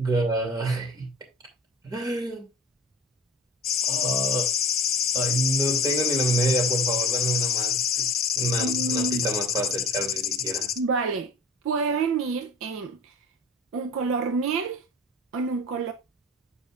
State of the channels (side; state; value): both; normal; correlation 0.38